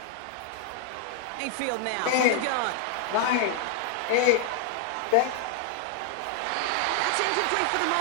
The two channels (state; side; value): different; both; correlation 0.00